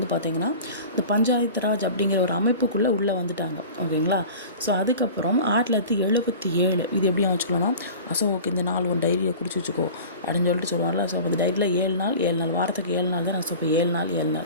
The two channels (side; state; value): both; inverted; correlation -0.39